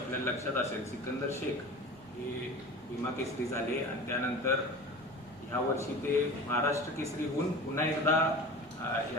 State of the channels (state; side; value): noise; right; rumble, 25 dB below the sound